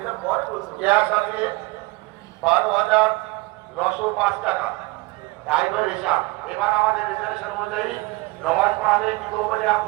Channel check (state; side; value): quieter; left; 23.3 dB